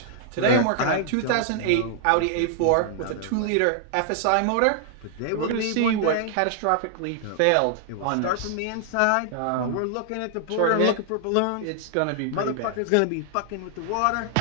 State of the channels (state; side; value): different; both; correlation -0.01